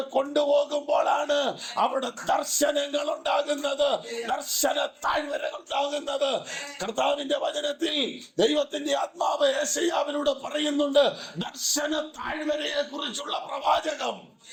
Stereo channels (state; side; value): identical; both; correlation 1.00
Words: കൊണ്ടുപോകുമ്പോഴാണ് അവിടെ ദർശനങ്ങൾ ഉണ്ടാകുന്നത്, ദർശന താഴ്വരകൾ ഉണ്ടാകുന്നത്. കർത്താവിന്റെ വചനത്തിൽ ദൈവത്തിന്റെ ആത്മാവ് യെശയ്യാവിലൂടെ പറയുന്നുണ്ട് ദർശന താഴ്വരയെ കുറിച്ചുള്ള പ്രവാചകം.